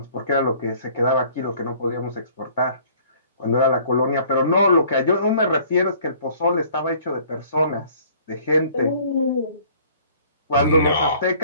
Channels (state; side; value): inverted; both; correlation -0.55